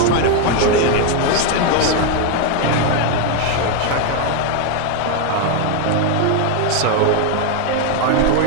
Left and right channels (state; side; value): different; both; correlation 0.01